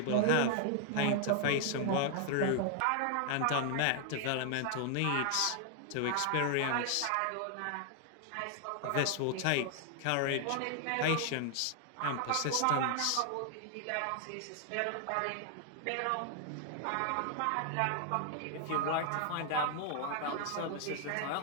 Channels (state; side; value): different; both; correlation 0.00